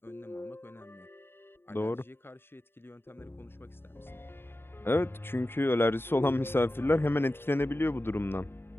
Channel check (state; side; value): late; right; 0.11 ms